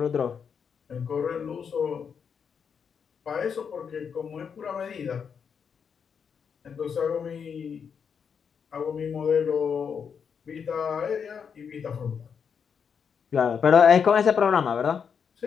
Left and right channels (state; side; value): quieter; right; 6.8 dB